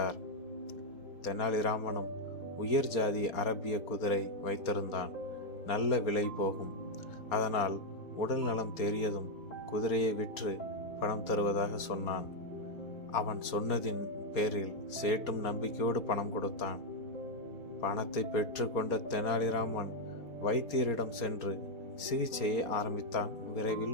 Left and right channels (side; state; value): right; late; 4.4 ms